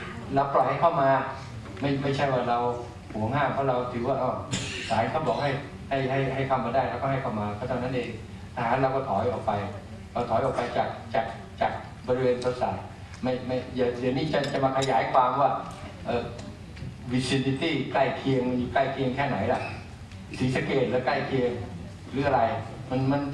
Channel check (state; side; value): identical; both; correlation 1.00